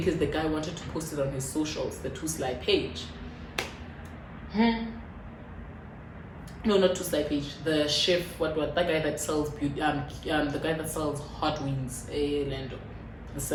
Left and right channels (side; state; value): both; identical; correlation 1.00